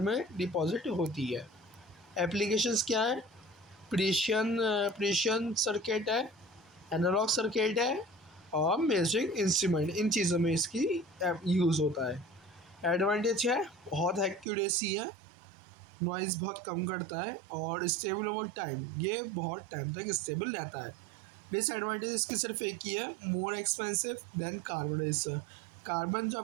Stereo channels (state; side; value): drops out; left; at 14.5 s